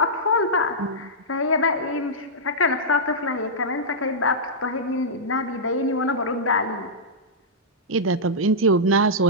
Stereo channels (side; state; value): both; normal; correlation -0.11